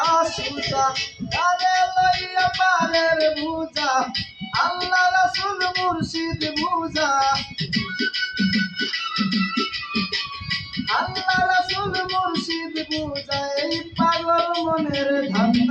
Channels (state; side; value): identical; both; correlation 1.00